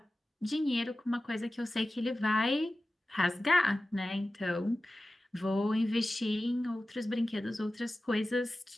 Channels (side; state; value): both; normal; correlation 0.95